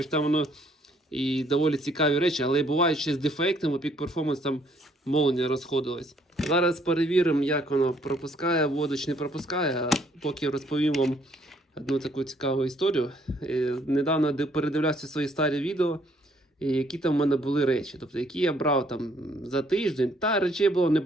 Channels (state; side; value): normal; both; correlation 0.65